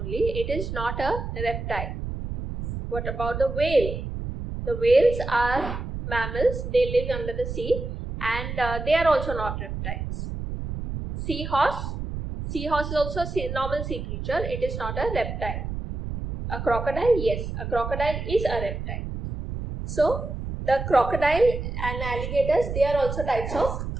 It is not a reptile. What about the whale? The whales are mammals. They live under the sea and they are also not reptiles. Seahorse. Seahorse is also a normal sea creature. It is not a reptile. A crocodile? Yes, a crocodile is a reptile. So, the crocodile and alligators, they are also types of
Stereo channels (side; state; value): right; noise; rumble, 6 dB below the sound